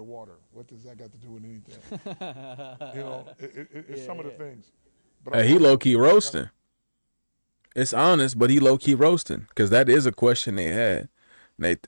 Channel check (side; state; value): both; inverted; correlation -1.00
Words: What does that got to do with anything? It's some of the things. But He low key roasting. It's honest, but he low key roasting because that is a question they had.